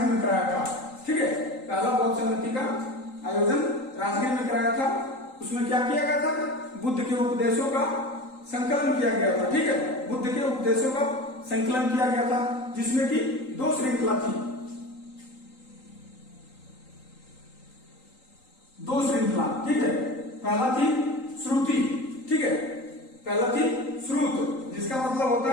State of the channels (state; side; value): late; right; 3.8 ms